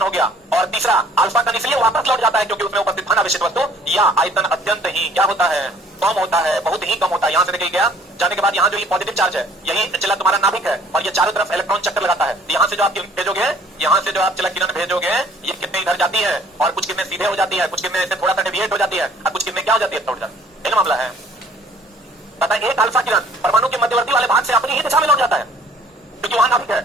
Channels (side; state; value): both; normal; correlation 0.56